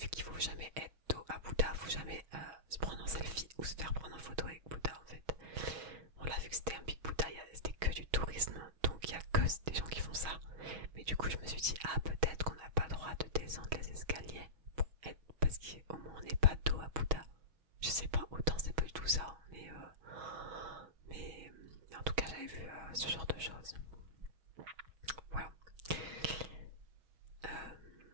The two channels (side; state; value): left; late; 6.2 ms